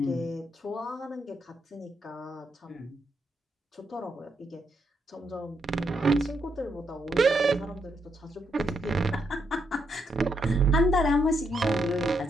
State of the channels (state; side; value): normal; both; correlation 0.79